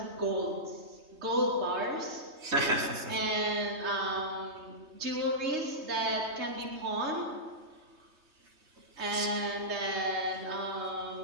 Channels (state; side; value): late; left; 3.3 ms